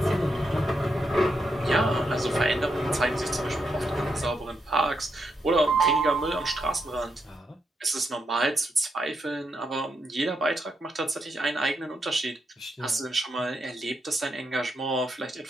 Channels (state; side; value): normal; both; correlation 0.82